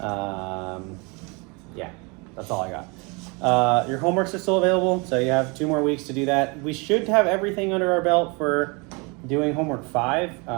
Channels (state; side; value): quieter; left; 29.8 dB